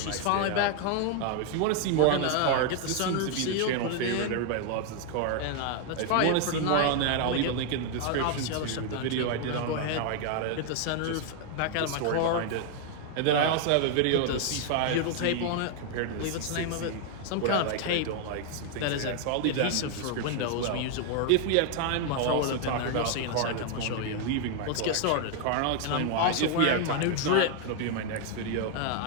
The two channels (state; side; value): different; both; correlation 0.00